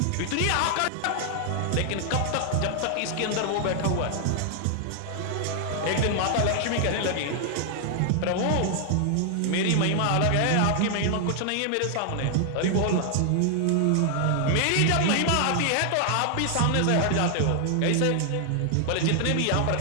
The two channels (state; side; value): different; both; correlation 0.00